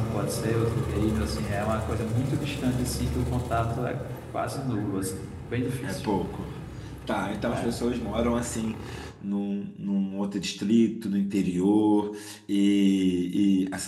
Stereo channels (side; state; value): both; identical; correlation 1.00